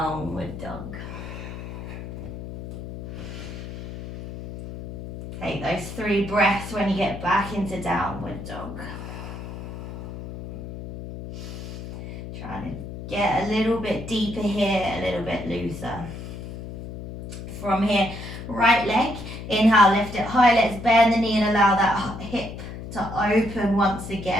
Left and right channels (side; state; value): left; noise; hum, 10 dB below the sound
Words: dog. Take those 3 breaths when you get back into downward dog. Trying to get a little bit deeper here, a little bit looser. From here, right leg, inhale, lift it high, let's bend the knee and allow that hip to open once